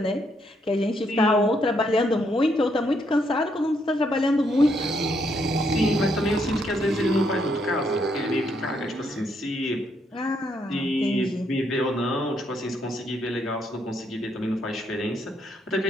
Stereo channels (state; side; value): normal; both; correlation 0.75